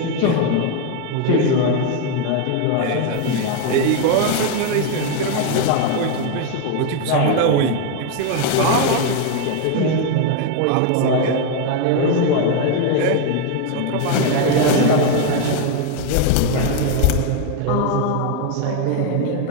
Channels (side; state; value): both; different; correlation 0.01